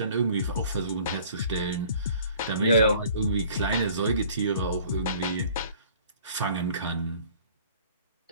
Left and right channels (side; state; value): both; inverted; correlation -0.52